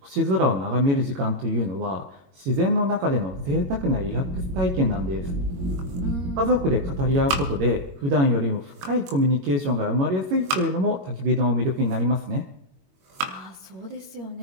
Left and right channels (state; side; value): late; left; 22 ms